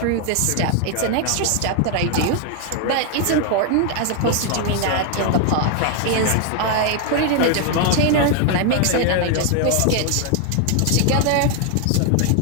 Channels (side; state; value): both; different; correlation 0.01